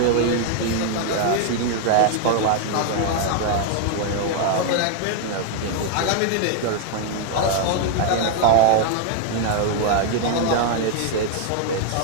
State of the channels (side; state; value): both; different; correlation 0.00